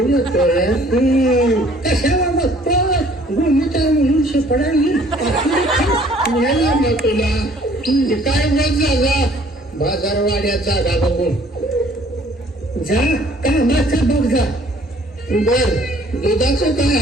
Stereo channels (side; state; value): both; normal; correlation 0.57